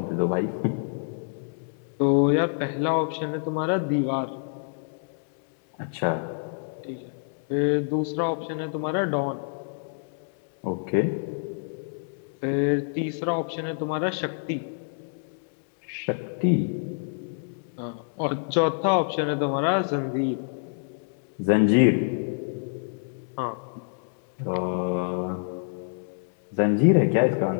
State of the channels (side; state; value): right; silent; digital silence